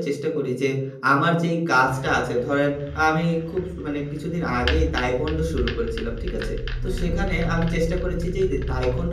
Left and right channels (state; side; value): identical; both; correlation 1.00